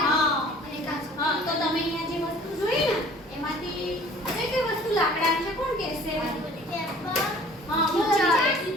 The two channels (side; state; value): both; normal; correlation 0.50